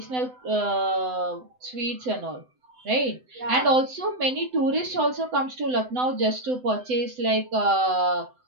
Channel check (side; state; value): left; late; 7.9 ms